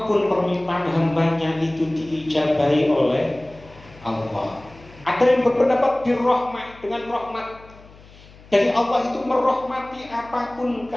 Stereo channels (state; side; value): noise; left; hum, 23 dB below the sound